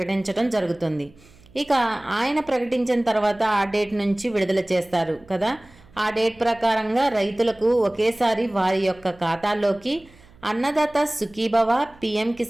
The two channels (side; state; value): right; noise; hum, 26 dB below the sound